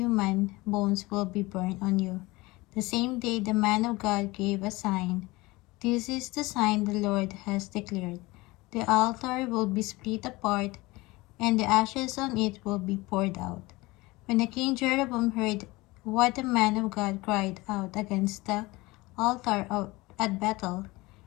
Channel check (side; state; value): right; quieter; 21.7 dB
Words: bones will be burned on you." The same day the man of God gave a sign. "This is the sign the Lord has declared. The altar will be split apart, and the ashes on it will be poured out." When the king Jeroboam heard what the man of God cried out against the altar at Bethel,